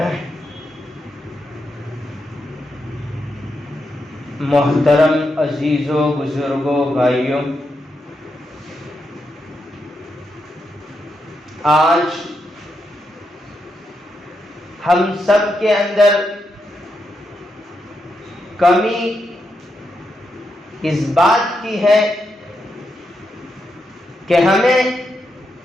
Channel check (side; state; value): both; normal; correlation 0.83